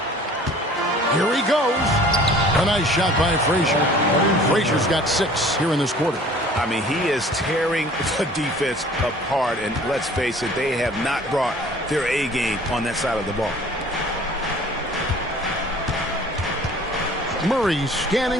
Here he goes. A nice shot by Frazier. Frazier's got 6 here in this quarter. I mean, he is tearing the defense apart, and let's face it, they have not brought their A game on that side of the ball. Murray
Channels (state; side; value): normal; both; correlation 0.49